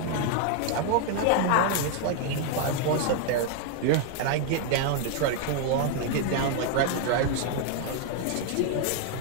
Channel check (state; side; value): different; both; correlation 0.01